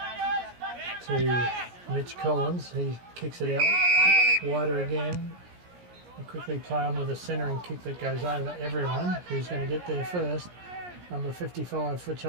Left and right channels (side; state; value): left; late; 17 ms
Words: to Mitch Collins. He kicks it out wider again. They quickly play on with a centering kick that goes over everyone. Who's going to get there first? Number 55 for